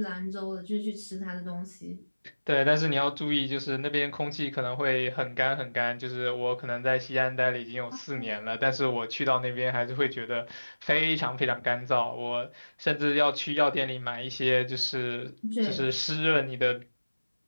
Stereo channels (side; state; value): both; inverted; correlation -1.00